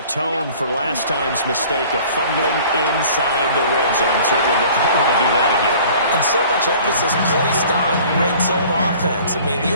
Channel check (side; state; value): both; inverted; correlation -0.49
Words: for last time's mistake of fumbling inside the red zone. Certainly they don't want to do that again. And so much emphasis placed on red zone offense. I mean,